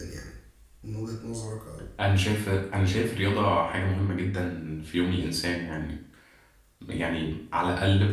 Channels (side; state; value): both; identical; correlation 1.00